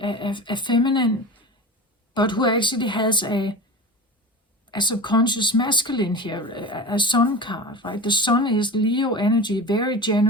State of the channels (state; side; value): normal; both; correlation 0.29